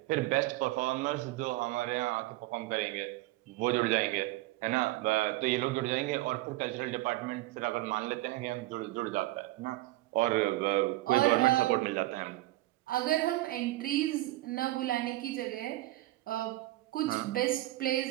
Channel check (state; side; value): quieter; left; 17.8 dB